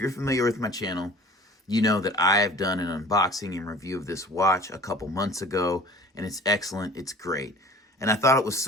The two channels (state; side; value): normal; both; correlation 0.45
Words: familiar with my channel, you know that I have done an unboxing and review of this watch a couple months ago, and it's excellent, it's great. And I thought it was